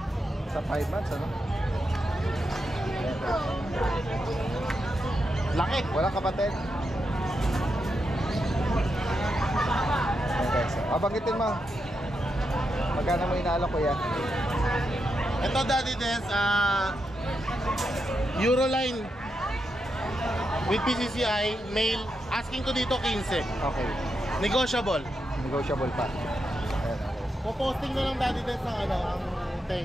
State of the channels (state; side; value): normal; both; correlation 0.85